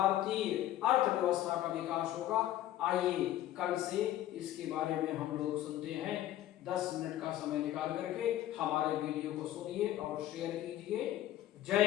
अर्थव्यवस्था का विकास होगा। आइए कल से इसके बारे में हम लोग सुनते हैं। 10 मिनट का समय निकाल करके हमारे वीडियो को सुनिए और शेयर कीजिए। जय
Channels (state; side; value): quieter; right; 13.3 dB